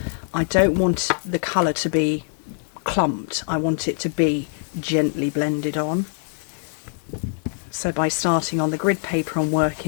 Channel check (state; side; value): silent; right; 56 dB below the other